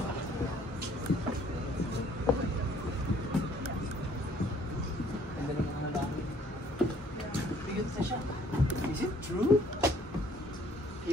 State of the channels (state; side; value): normal; both; correlation 0.60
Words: Is it true?